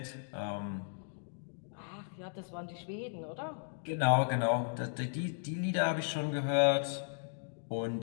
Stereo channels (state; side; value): silent; right; digital silence